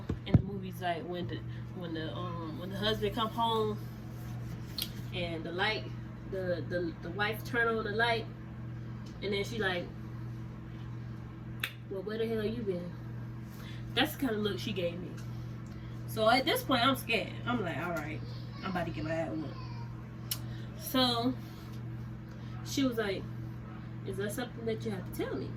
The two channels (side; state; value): both; identical; correlation 1.00